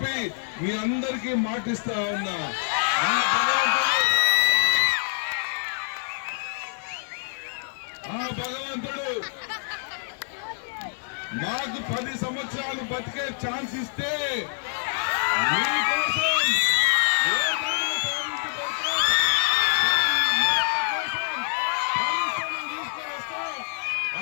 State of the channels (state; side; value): silent; right; digital silence